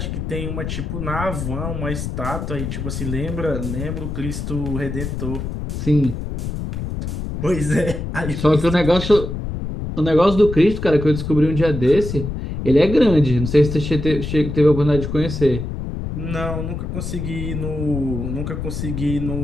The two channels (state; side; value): noise; left; rumble, 5 dB below the sound